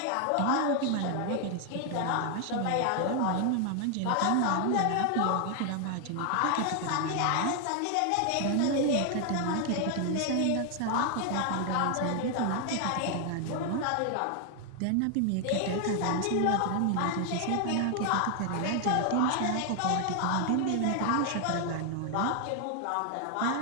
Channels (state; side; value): different; both; correlation 0.00